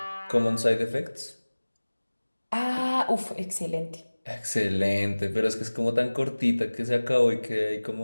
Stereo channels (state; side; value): inverted; both; correlation -1.00